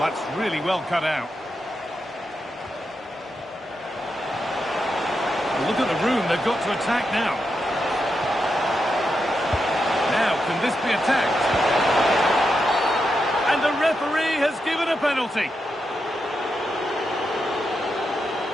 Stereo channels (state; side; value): normal; both; correlation 0.86